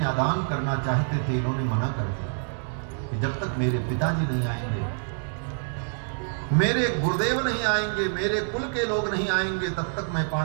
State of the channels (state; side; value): silent; left; digital silence